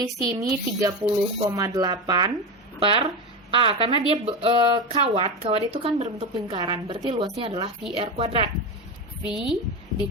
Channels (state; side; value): normal; both; correlation 0.19